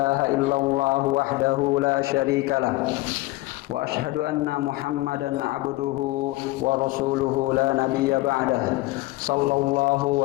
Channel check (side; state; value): right; quieter; 20.1 dB